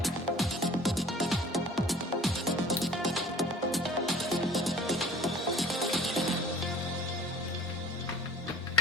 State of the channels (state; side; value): normal; both; correlation 0.48